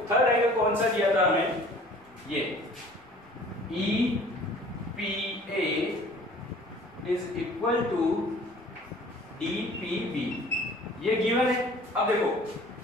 थर्ड एंगल कौन सा दिया था हमें, ये EPA is equal to DPB, ये गिवन है. अब देखो,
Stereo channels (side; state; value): both; normal; correlation 0.49